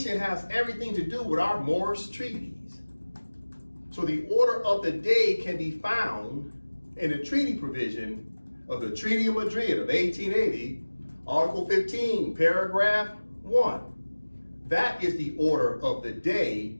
has everything to do with our Moorish treaties. So the order of the day can be found in the treaty provision of the Treaty of Madrid of 1880, Article 15, Paragraph 1. That is the order of the day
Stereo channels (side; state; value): both; inverted; correlation -1.00